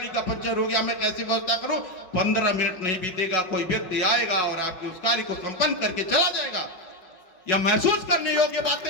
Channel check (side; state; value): right; late; 5.4 ms